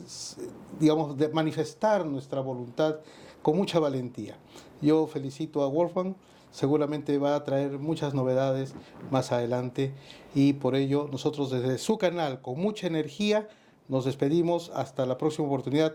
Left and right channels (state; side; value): identical; both; correlation 1.00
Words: digamos, de manifestar nuestra voluntad con mucha valentía. Yo felicito a Wolfgang, seguramente va a traer muchas novedades más adelante, y por ello nosotros desde su canal, con mucha energía, nos despedimos hasta la próxima oportunidad,